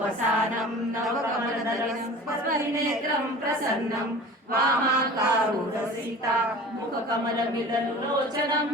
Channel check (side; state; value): both; normal; correlation 0.40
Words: वसानं नवकमलदलं परिनेत्रं प्रसन्नं वामाकारुरसीता मुखकमलमिललोचनं